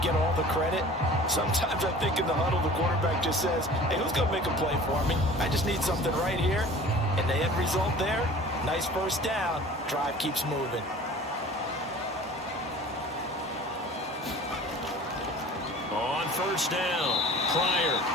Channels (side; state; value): both; normal; correlation 0.44